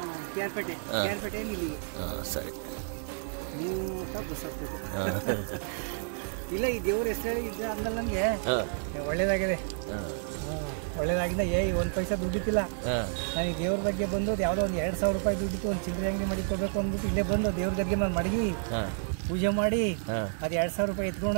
ಕೇರ್ಪೇಟೆಯಿಂದ ಇಲ್ಲಿಗೆ. ಸರಿ, 3 ಬಸ್ ಹಾಕ್ಬೇಕು. ಇಲ್ಲ ಈ ದೇವ್ರ ಹೆಸರು ಇದ್ದ ಅಂದಲ್ಲಿ ನನಗೆ ಒಳ್ಳೇದಾಗಿದೆ. ಒಳ್ಳೇದಾಗಿಂದ ಒಂದು ಪೈಸಾ ದುಡ್ಡಿತ್ತಿಲ್ಲ. ನನಗೆ ದೇವ್ರ ಬಗ್ಗೆ ಬಂದು ಯಾವುದೋ ಒಂದು 2,000 ರೂಪಾಯಿ ದುಡ್ಡಿತ್ತು, ಒಂದು ಚಿಲ್ಲರೆ ಅಂಗಡಿ ಮಡಿಕೋಬೇಕು ಅಂದ್ಬಿಟ್ಟು ಇಲ್ಲೇ ಬಂದು ದೇವ್ರ ಗದ್ಗೆ ನಾನು ಮಡಗಿ ಪೂಜೆ ಮಾಡಿ ಅದು 2,000 ರೂಪಾಯಿ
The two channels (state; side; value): silent; left; digital silence